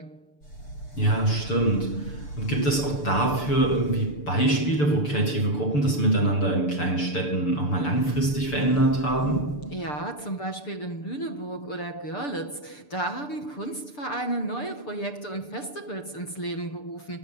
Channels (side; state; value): right; late; 6.8 ms